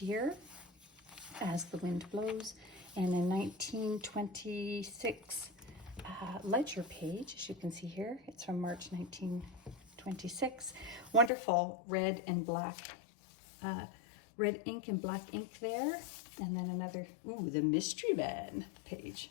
As the Wind Blows. And a 1926 ledger page, as you can see here. It's from March 1926. Wonderful red and black, red ink and black ink there. And then another, ooh, the Mystery Man page.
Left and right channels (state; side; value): drops out; right; at 11.3 s